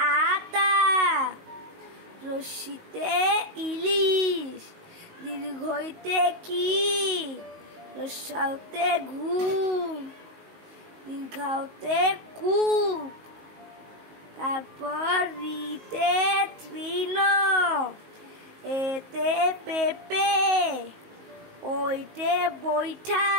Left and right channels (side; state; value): left; late; 19 ms